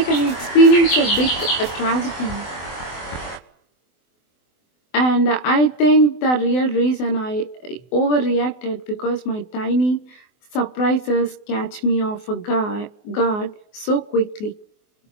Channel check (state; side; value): late; right; 24 ms